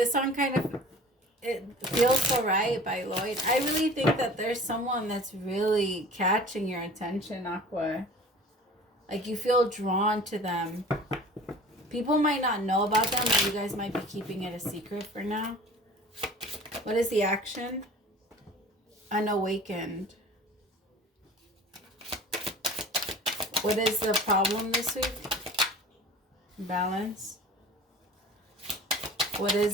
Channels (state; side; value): normal; both; correlation 0.43